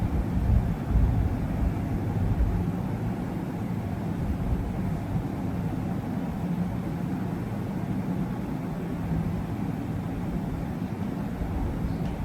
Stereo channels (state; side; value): identical; both; correlation 1.00